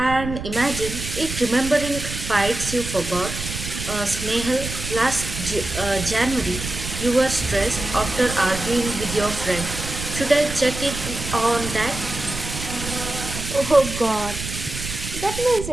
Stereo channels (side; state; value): right; noise; rumble, 7 dB below the sound